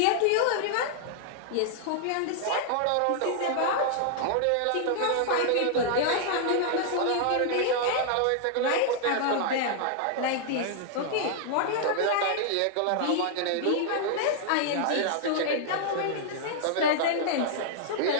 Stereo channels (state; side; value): different; both; correlation -0.01